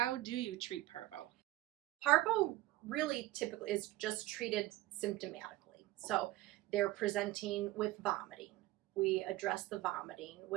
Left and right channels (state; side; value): quieter; left; 16.8 dB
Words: do you treat parvo? Parvo really typically is just treated symptomatically. So they're presenting with vomiting. We address the vomiting